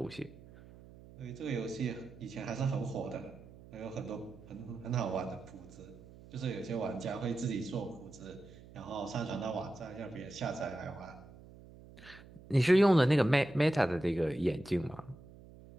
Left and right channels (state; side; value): noise; right; hum, 20 dB below the sound